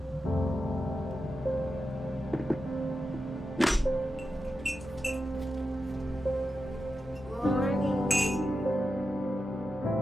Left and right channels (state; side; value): normal; both; correlation 0.89